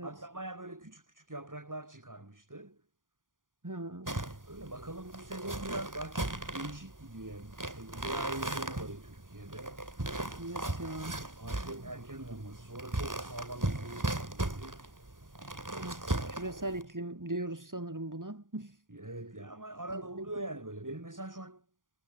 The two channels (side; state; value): left; late; 0.89 ms